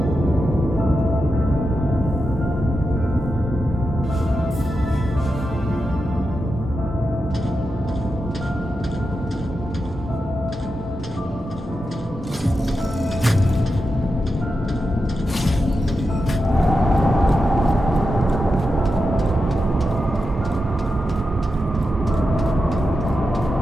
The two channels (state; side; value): normal; both; correlation 0.89